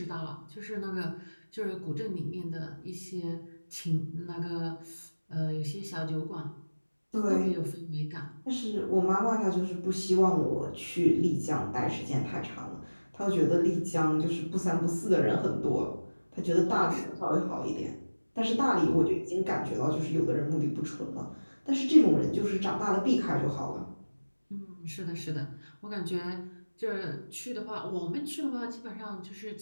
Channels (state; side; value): inverted; both; correlation -1.00